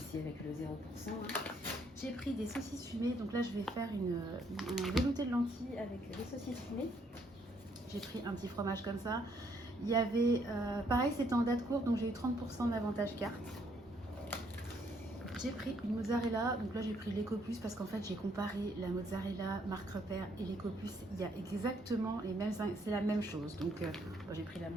avec le 0%. Hein. J'ai pris des saucisses fumées, donc là je vais faire un velouté de lentilles avec des saucisses fumées. J'ai pris un petit fromage comme ça. Il y avait, pareil, c'était en date courte, donc j'ai eu 30% d'avantage carte. J'ai pris une mozzarella, donc là j'ai pris l'Ecopus parce qu'en fait j'ai comparé la mozzarella marque repère et l'Ecopus. Il y a exactement les mêmes, c'est la même chose, donc bon, j'ai pris la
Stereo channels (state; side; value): normal; both; correlation 0.69